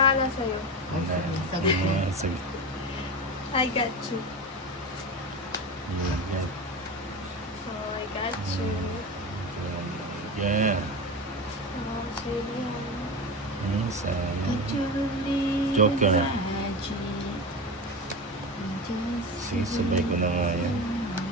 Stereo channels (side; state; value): both; normal; correlation 0.24